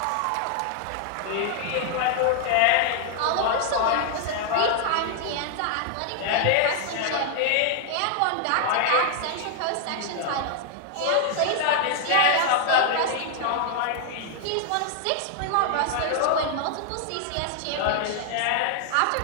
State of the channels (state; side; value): different; both; correlation 0.00